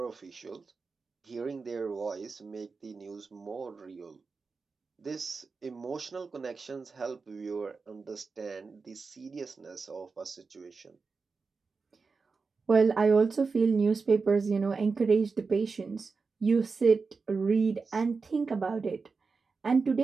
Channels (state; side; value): quieter; left; 4.6 dB